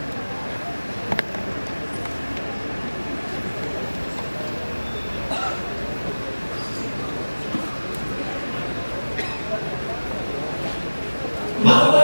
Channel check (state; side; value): inverted; both; correlation -1.00